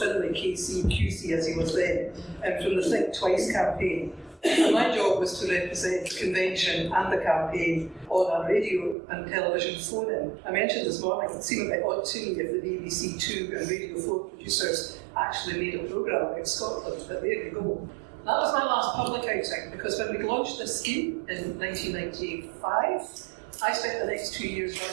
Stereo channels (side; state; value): left; drops out; at 9.0 s